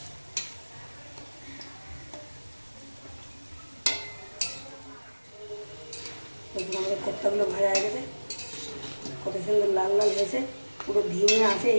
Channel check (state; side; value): inverted; both; correlation -1.00